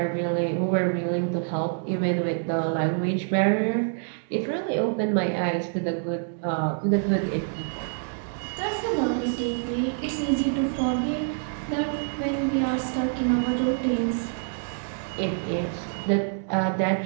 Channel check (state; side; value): silent; left; digital silence